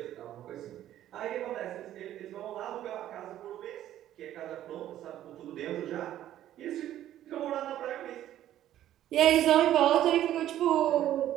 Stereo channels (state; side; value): quieter; left; 12.4 dB